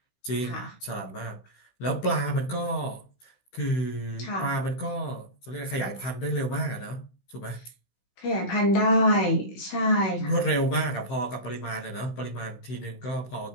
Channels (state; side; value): late; right; 16 ms